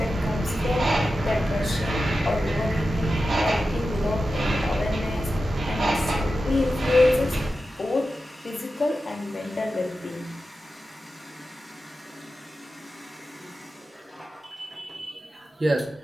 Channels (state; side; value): normal; both; correlation 0.92